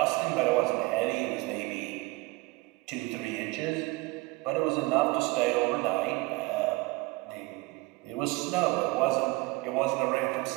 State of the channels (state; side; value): quieter; left; 23.5 dB